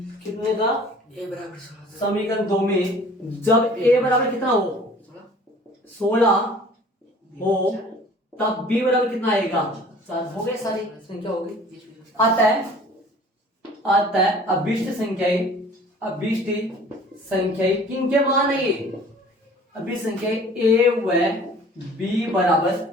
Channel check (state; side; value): normal; both; correlation 0.48